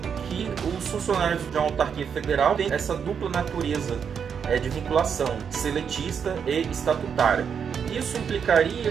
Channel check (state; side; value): quieter; left; 7.1 dB